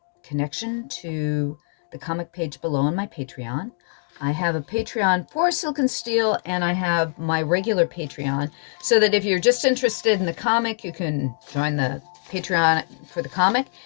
connection to the comic page below on my Patreon. I have a Patreon for Silk and Steele, and I have my regular Patreon, so that if you're just interested in the comic, you can join the Patreon for the comic.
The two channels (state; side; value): silent; right; 63 dB below the other